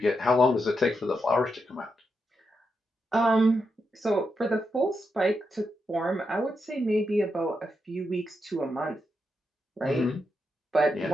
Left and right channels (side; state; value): both; normal; correlation 0.84